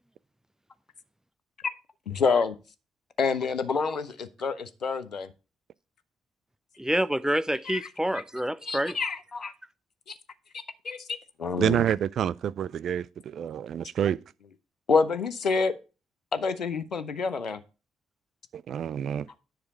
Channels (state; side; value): normal; both; correlation 0.73